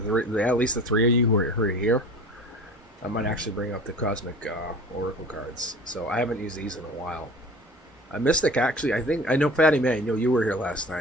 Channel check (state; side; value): normal; both; correlation 0.41